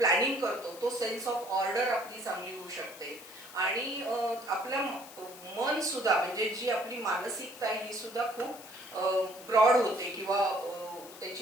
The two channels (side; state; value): left; noise; hiss, 17 dB below the sound